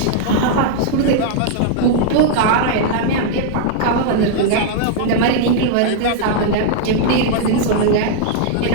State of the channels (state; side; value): different; both; correlation -0.01